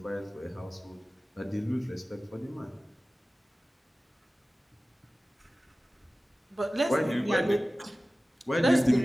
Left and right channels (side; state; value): both; normal; correlation 0.97